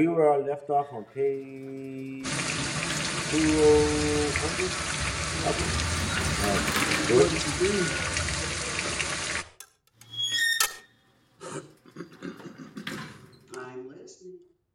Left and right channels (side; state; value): both; identical; correlation 1.00